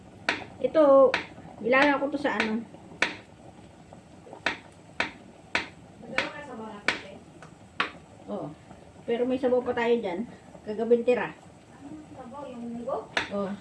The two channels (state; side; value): identical; both; correlation 1.00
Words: Ito, ilalagay ko to sa ano. Oo. Pero may sabaw pa tayo dyan. Kagabing tira. Sabaw, yung munggo? Oo.